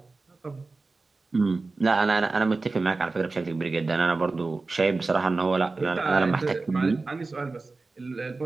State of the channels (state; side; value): quieter; left; 3.7 dB